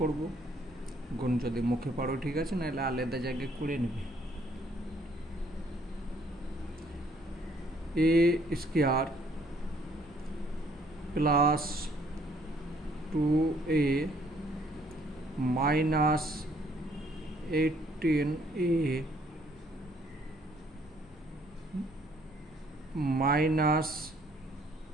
করব, গুণ যদি মুখে পারো ঠিক আছে, নাহলে আলাদা জায়গায় করে নেবে। a square plus 2a minus 18a minus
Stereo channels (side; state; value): both; normal; correlation 0.64